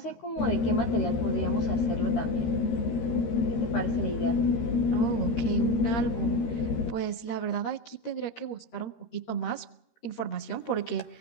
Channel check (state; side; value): late; right; 13 ms